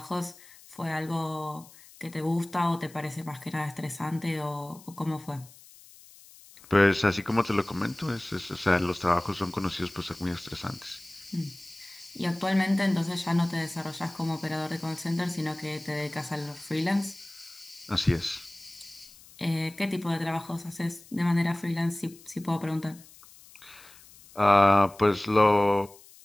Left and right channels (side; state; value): left; noise; hiss, 22 dB below the sound